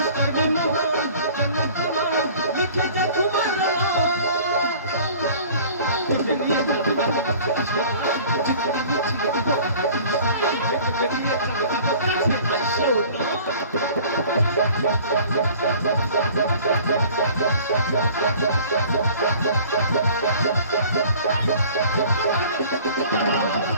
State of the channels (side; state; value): both; inverted; correlation -0.48